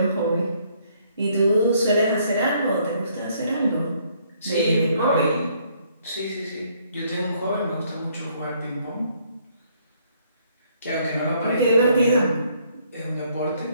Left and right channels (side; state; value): both; inverted; correlation -0.67